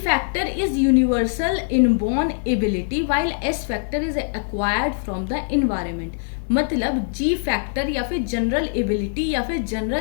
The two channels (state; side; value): silent; right; digital silence